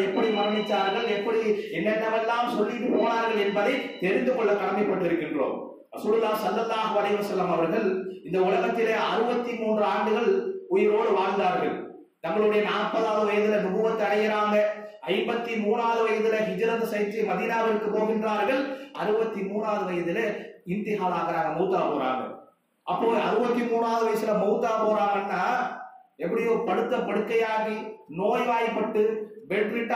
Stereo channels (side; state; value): both; identical; correlation 1.00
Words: எப்படி மரணிச்சார்கள், எப்படி என்னென்னவெல்லாம் சொல்லிட்டு போனார்கள் என்பதை தெரிந்து கொள்ள கடமைப்பட்டிருக்கின்றோம். ரசூலுல்லாஹ் ஸல்லல்லாஹு அலைஹி வஸல்லம் அவர்கள் இந்த உலகத்திலே 63 ஆண்டுகள் உயிரோடு வாழ்ந்தார்கள். தங்களுடைய 40வது வயதுல நுபுவத் அடைகிறாங்க. 53வது வயதுல ஹிஜ்ரத் செய்து மதீனாவிற்கு போகின்றார்கள். 63வது வயதுல இன்திஹால் ஆகறாங்க, மௌத்தா போறாங்க. அப்போ 63வது வயசுல மௌத்தா போறாங்கன்னா எப்படியோ படுத்த படுக்கையாகி நோய்வாய்ப்பட்டு பெட்